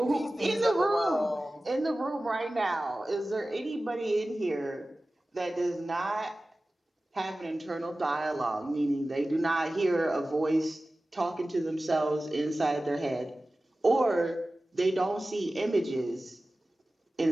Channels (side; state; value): both; normal; correlation 0.96